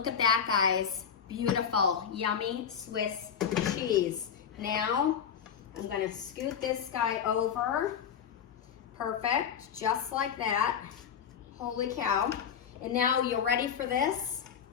at that, guys. Beautiful, yummy Swiss cheese. Now, I'm gonna scoot this guy over. Perfect, just like that. Holy cow. And now you're ready for this?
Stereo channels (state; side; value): quieter; right; 7.8 dB